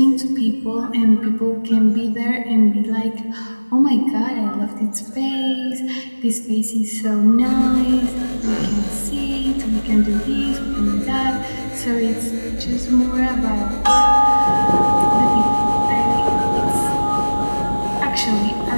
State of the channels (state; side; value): inverted; both; correlation -1.00